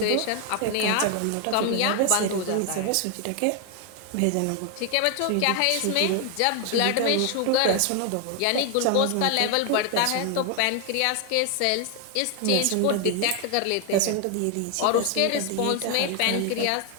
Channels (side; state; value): both; different; correlation 0.00